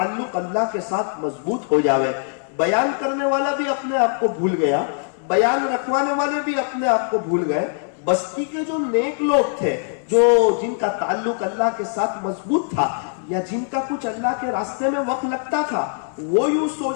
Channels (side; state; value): right; silent; 64 dB below the other